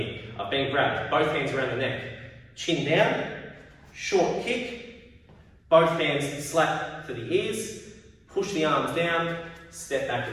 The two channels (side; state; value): both; identical; correlation 1.00